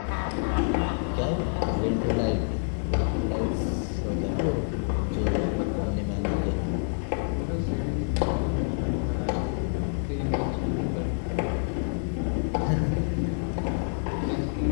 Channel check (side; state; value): right; silent; digital silence